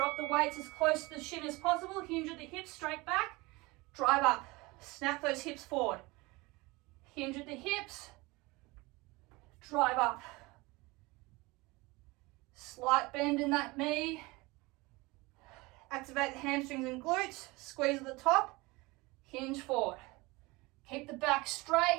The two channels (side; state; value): left; quieter; 23.4 dB